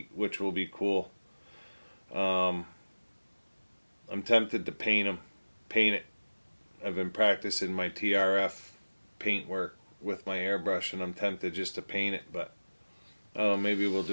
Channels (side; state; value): both; inverted; correlation -1.00